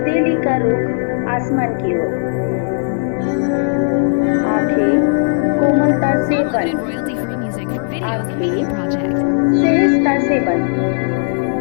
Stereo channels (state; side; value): silent; right; digital silence